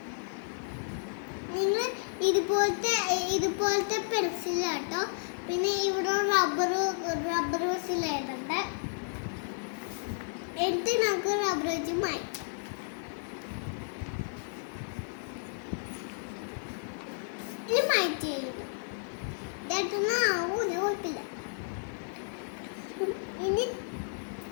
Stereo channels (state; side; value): silent; right; 56 dB below the other